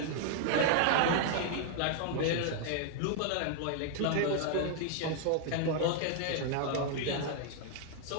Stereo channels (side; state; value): both; different; correlation -0.01